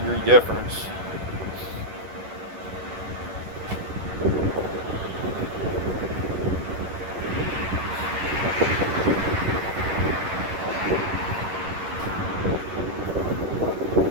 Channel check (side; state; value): left; late; 11 ms